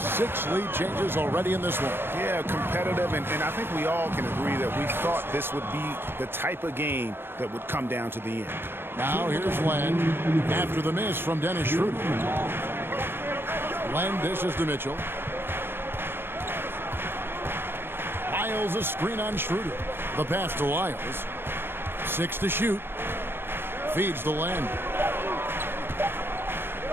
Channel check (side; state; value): left; late; 0.11 ms